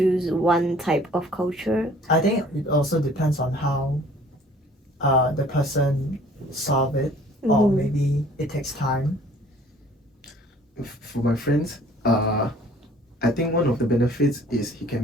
one type of culture? I think it also depends on how the person solve it, or maybe it takes time. for my friends, I think one of the benefits is he can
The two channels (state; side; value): normal; both; correlation 0.54